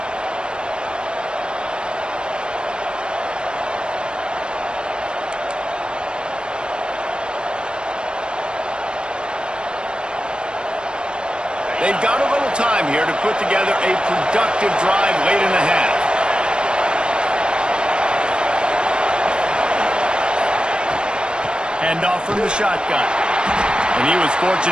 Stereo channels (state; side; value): late; left; 0.052 ms